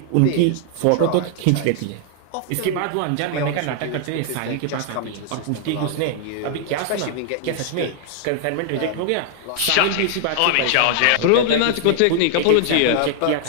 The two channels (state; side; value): different; both; correlation 0.00